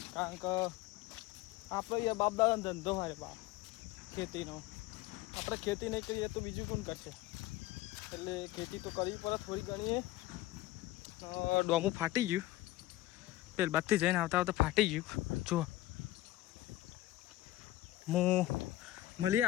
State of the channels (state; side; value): quieter; right; 16.3 dB